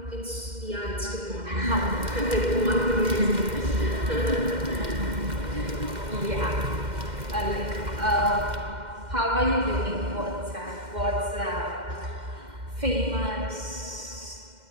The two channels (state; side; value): late; left; 2.1 ms